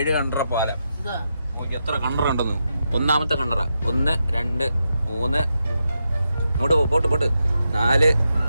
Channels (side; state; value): both; inverted; correlation -0.85